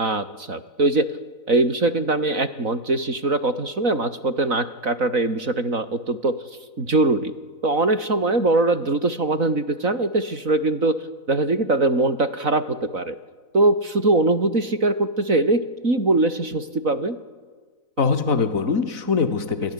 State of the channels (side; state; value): left; late; 4.0 ms